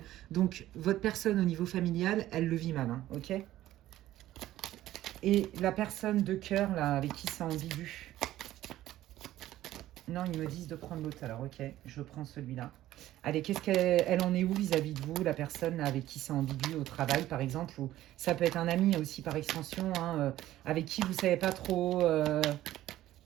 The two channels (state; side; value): quieter; left; 14.3 dB